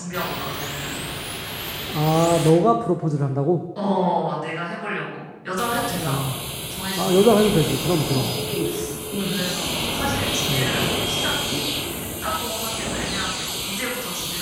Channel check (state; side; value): identical; both; correlation 1.00